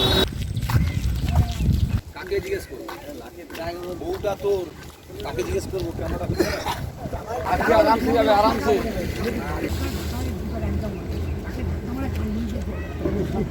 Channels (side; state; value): both; identical; correlation 1.00